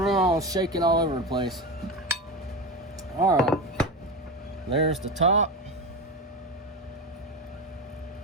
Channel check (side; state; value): both; normal; correlation 0.21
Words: shaking all over the place. All right, there's the top.